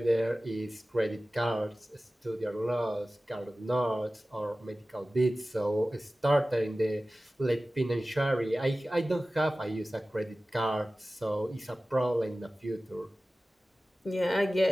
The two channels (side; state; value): both; normal; correlation 0.96